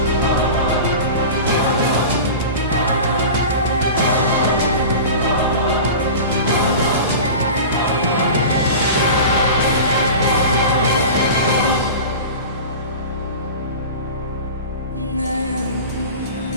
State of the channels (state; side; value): inverted; both; correlation -0.33